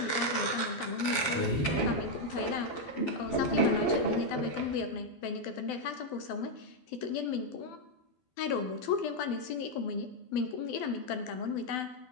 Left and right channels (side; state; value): right; late; 12 ms